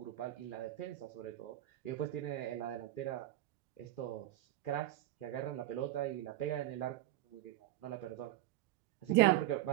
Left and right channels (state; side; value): quieter; left; 15.0 dB